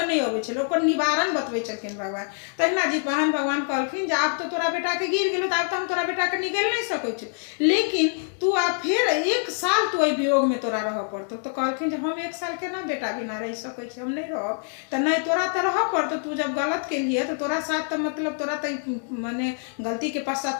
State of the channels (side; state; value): right; silent; 61 dB below the other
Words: नहीं अबै छलै, ओकर निवारण बतबै छलखिन भगवान। तहिना जितवाहन भगवान कहलखिन जे आब तो तोरा बेटा के गिर गेलो, आब तो हम तोरा बेटा के निगल नहीं सकै छी, लेकिन तू आब फेर 1 साल तू वियोग में तोरा रह पड़तो। तो कहलखिन जे हम 1 साल केना बेटा बिना रह सकै छी, हम नहीं रहब। तो नहीं तोरा तो रह पड़तो, तू जब गलत केलिए तो तोरा साथ तो मतलब तोरा तो माने गलती के